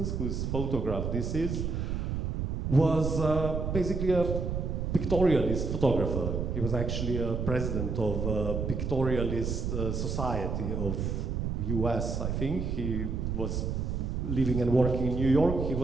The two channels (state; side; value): noise; right; rumble, 1 dB below the sound